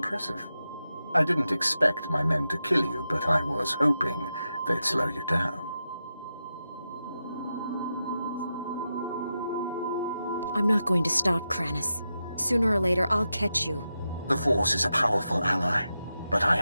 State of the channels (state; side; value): inverted; both; correlation -0.89